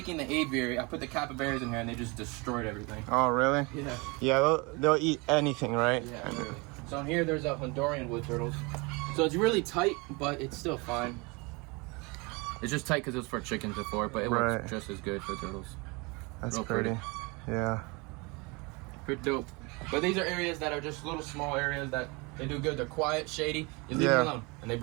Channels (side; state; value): left; quieter; 27.7 dB